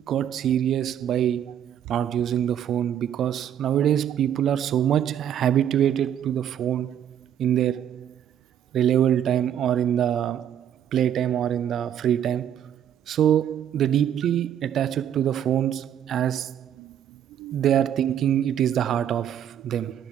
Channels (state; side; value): quieter; left; 9.9 dB